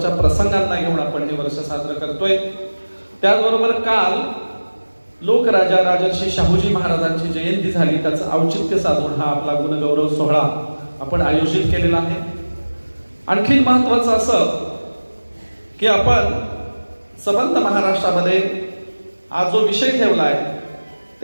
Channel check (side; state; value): both; inverted; correlation -1.00